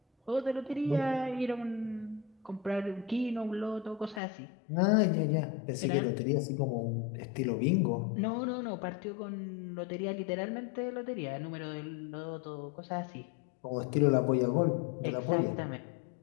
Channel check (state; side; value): drops out; right; at 4.2 s